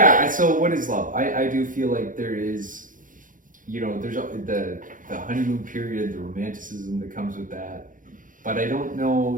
so what is love? I do feel like there is, you know, there's the honeymoon period, the romanticism that comes with that, but I don't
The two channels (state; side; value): late; left; 0.39 ms